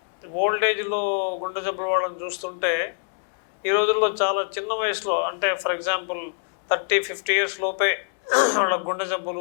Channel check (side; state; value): right; silent; 57 dB below the other